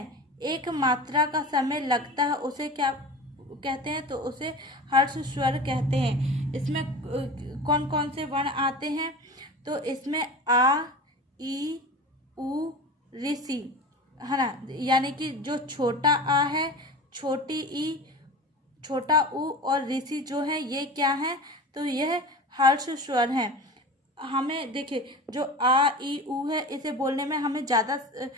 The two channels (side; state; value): both; normal; correlation 0.33